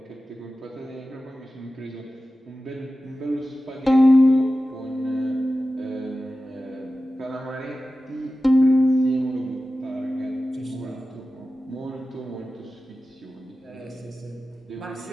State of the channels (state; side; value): normal; both; correlation 0.94